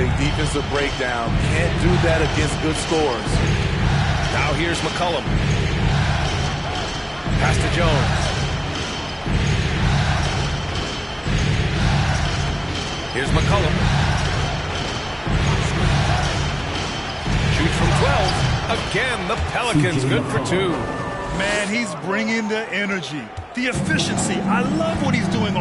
defensive breakdown. Can't do that against good scores. Now here's McCollum. Pass to Jones. Here's McCollum. Shoots from 12. Again, the Pelicans good for 2. Man, he's bringing the energy, the efficiency. I love what he's doing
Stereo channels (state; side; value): identical; both; correlation 1.00